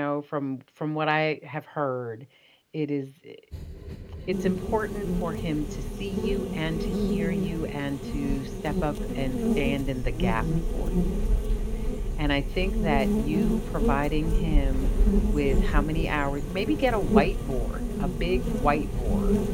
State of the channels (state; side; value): identical; both; correlation 1.00